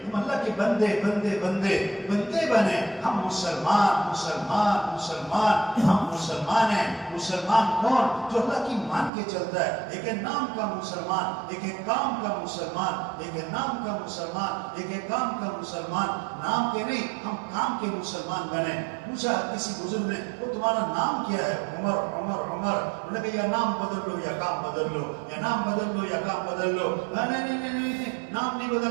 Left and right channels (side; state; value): left; drops out; at 9.1 s